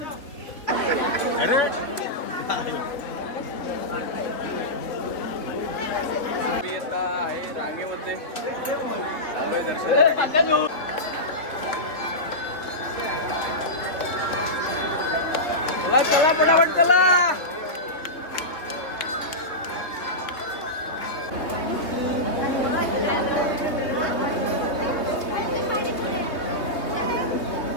मी आता आहे रांगेमध्ये चाललोय दर्शनासाठी. चला चला पटापट चला.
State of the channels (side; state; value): right; late; 3.0 ms